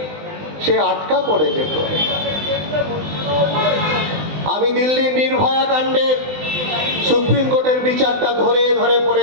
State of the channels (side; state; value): left; late; 20 ms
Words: সে আটকা পড়ে যেত। আমি দিল্লির নির্ভয়া কাণ্ডের সুপ্রিম কোর্টের বিচারটা ধরে ধরে